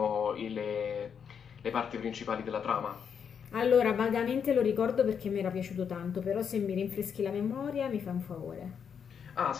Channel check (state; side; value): quieter; right; 7.2 dB